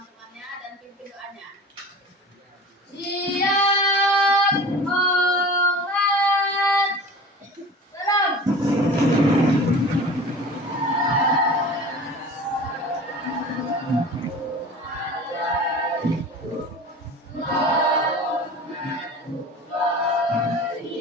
dan pimpin doanya. Siap, hormat, salam.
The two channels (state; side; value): normal; both; correlation 0.38